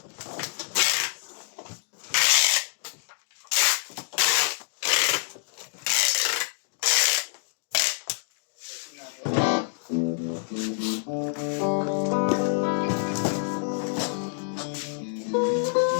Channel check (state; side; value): silent; right; 55 dB below the other